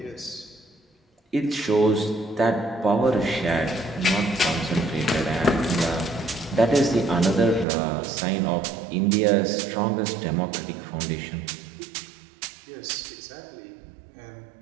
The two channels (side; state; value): left; drops out; at 7.7 s